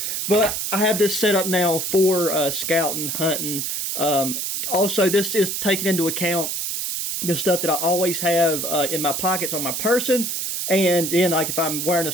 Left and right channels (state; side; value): noise; right; hiss, 2 dB below the sound